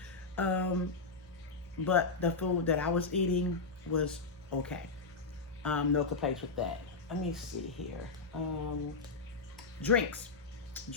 But the food that I was eating was okay. No complaints with that. Let me see here. Drinks.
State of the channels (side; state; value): right; quieter; 4.2 dB